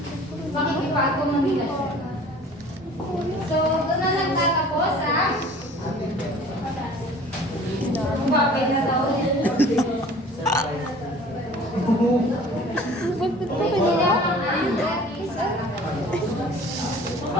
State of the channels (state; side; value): normal; both; correlation 0.47